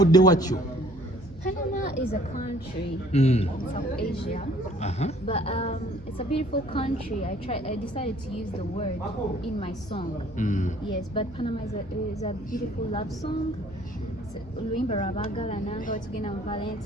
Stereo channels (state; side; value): noise; right; hum, 19 dB below the sound